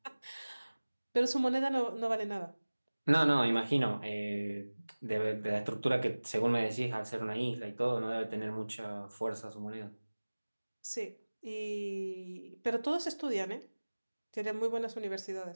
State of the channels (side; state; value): both; inverted; correlation -1.00